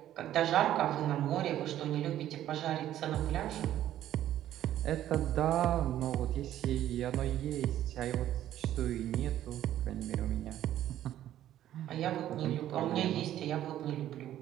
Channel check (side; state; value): left; quieter; 12.3 dB